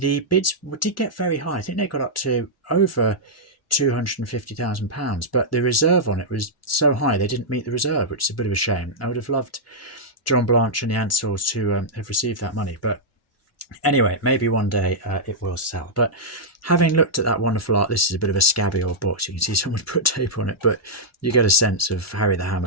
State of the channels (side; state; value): both; normal; correlation -0.08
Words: bids did get very high. I think they got up to over £250,000, but the reserve on it was so high they didn't meet the reserve, which is a bit of a shame. I would have loved John Blanche and the Ansells to have received that money, but anyway, maybe one day it will sell. But having looked at that wonderful art, this is a bit of a scabby old box. You can see someone put tape on it, but you get a sense of Harry the